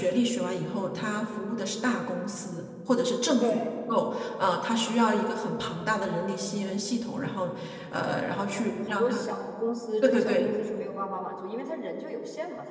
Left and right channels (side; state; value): both; identical; correlation 1.00